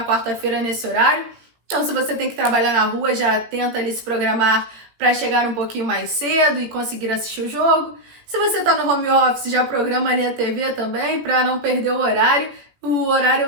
quarta-feira nesse horário. Então, se você tem que trabalhar na rua, já tenta ali se programar para chegar um pouquinho mais cedo e conseguir assistir o jogo. Se você está no home office, já programa ali a TV também para não perder o horário. O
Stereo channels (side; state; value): left; late; 17 ms